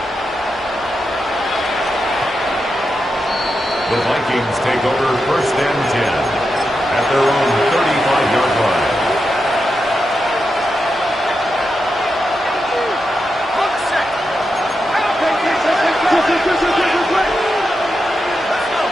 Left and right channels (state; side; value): normal; both; correlation 0.87